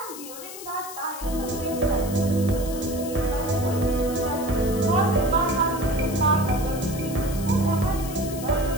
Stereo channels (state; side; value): noise; left; hiss, 12 dB below the sound